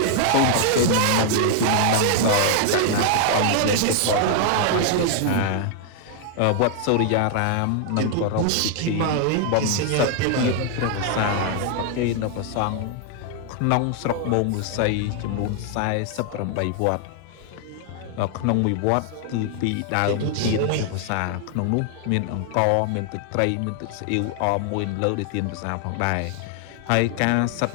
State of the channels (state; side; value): different; both; correlation 0.00